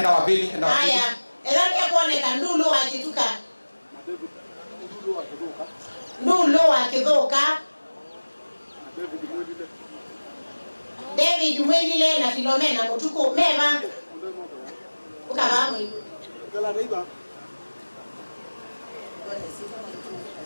wa pili, enda wa pili. Haya, elani kuoneka ndulu akituka. Ndulu akidhoka. David Mwelile na Philomena Mutuku mema. Ukabamu hiyo.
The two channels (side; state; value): both; inverted; correlation -1.00